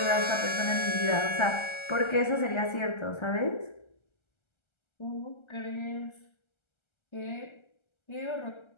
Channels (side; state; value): right; late; 1.3 ms